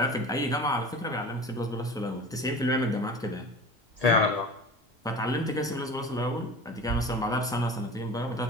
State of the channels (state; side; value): normal; both; correlation 0.36